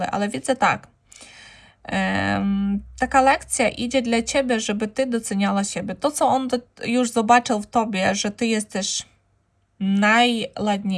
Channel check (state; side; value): identical; both; correlation 1.00